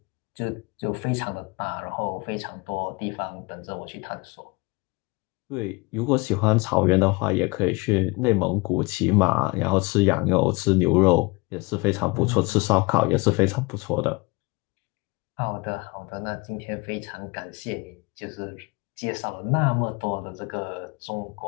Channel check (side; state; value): right; quieter; 26.5 dB